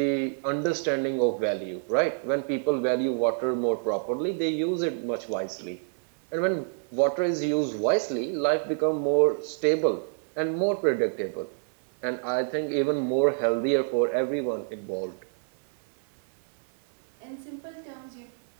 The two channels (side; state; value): left; silent; 60 dB below the other